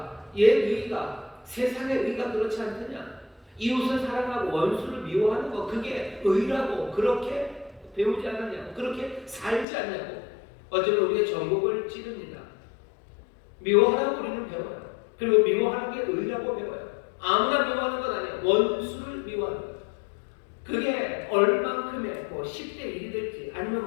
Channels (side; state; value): right; drops out; at 9.7 s